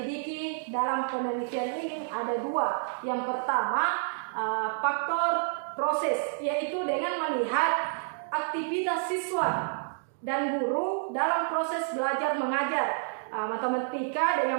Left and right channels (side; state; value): left; silent; digital silence